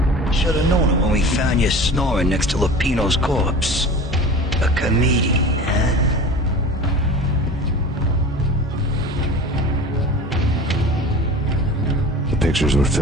Should've known it when we found you snoring next to Lupino's corpse. A comedian, huh? The pictures were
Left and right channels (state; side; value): normal; both; correlation 0.37